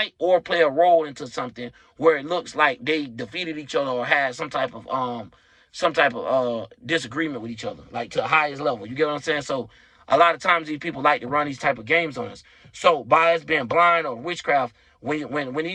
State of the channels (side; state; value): both; identical; correlation 1.00